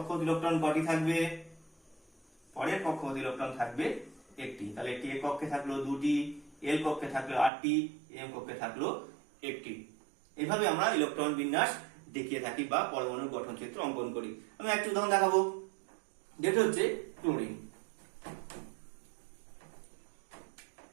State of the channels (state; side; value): drops out; left; at 7.5 s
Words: ইলেকট্রন কটি থাকবে? পরের কক্ষপথ ইলেকট্রন থাকবে একটি। তাহলে একটি এ কক্ষে থাকলো 2টি, এল কক্ষে থাকলো 8টি, এম কক্ষে থাকলো একটি। এভাবে আমরা ইলেকট্রন বিন্যাস দেখিয়ে থাকি বা পরমাণুর গঠন চিত্র অঙ্কন করি। আমি একটা উদাহরণ দেখাবো, যেটা হচ্ছে ক্লোরিন।